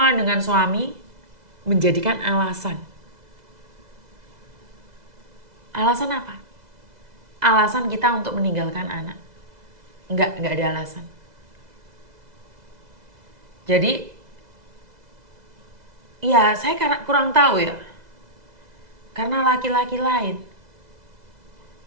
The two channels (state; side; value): late; left; 2.0 ms